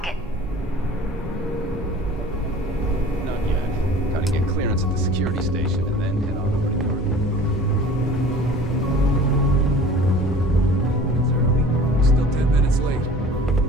Not yet. Gotta get clearance glance at the security station and then head on over to Garden. Still 10 minutes late.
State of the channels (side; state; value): both; normal; correlation 0.44